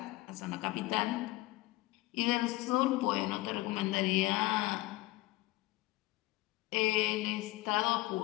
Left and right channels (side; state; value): right; quieter; 19.5 dB